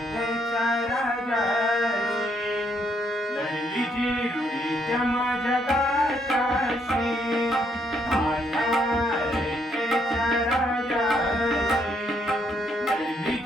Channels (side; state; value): both; normal; correlation 0.72